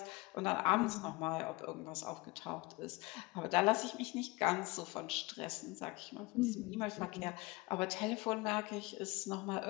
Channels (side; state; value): right; quieter; 23.4 dB